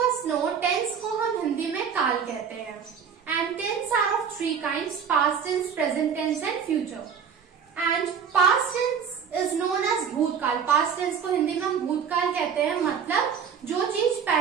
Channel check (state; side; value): quieter; left; 7.0 dB